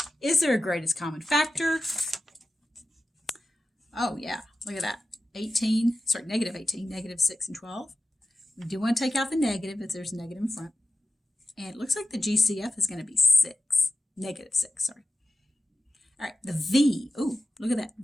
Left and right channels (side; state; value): both; normal; correlation 0.93